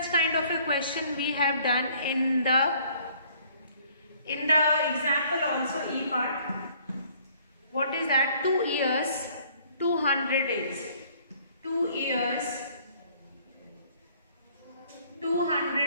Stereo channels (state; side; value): inverted; both; correlation -0.59